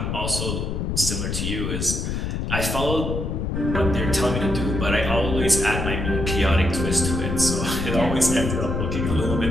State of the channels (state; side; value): noise; left; rumble, 2 dB below the sound